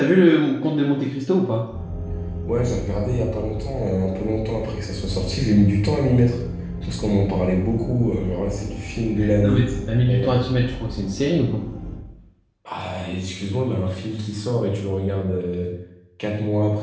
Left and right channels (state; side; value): identical; both; correlation 1.00